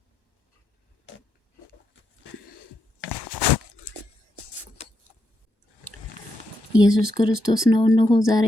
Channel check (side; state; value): right; late; 1.1 ms